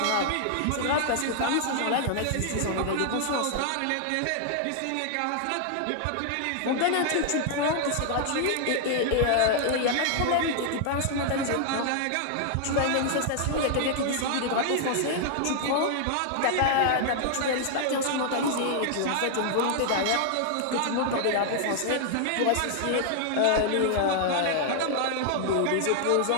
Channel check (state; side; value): different; both; correlation -0.01